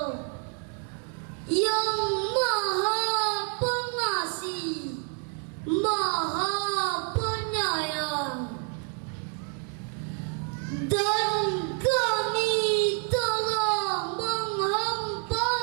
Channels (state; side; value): quieter; left; 39.0 dB